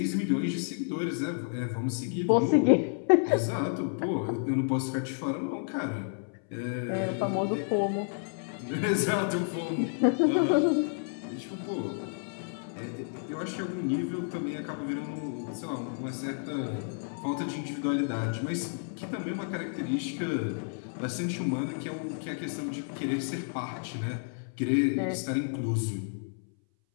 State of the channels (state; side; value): silent; right; 57 dB below the other